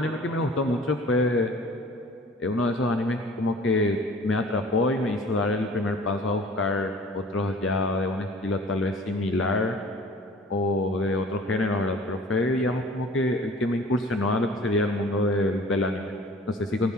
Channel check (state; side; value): normal; both; correlation 0.47